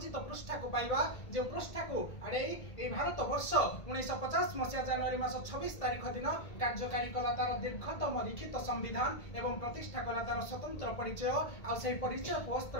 पृष्ठा को पाइबा। जो पृष्ठा को आड़े भारत वर्ष 1950 मसीहा जनवरी मास 26 तारिख दिन कार्यकारी कला तार दीर्घतम लिखित संविधान एवं प्रतिष्ठा कला तार स्वतंत्र परिचय आ से परिचय को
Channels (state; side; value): late; right; 1.8 ms